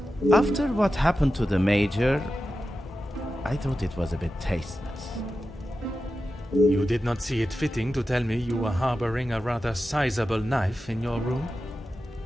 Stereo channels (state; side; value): normal; both; correlation 0.92